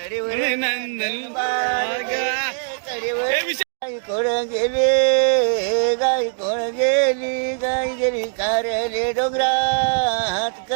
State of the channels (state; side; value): silent; left; digital silence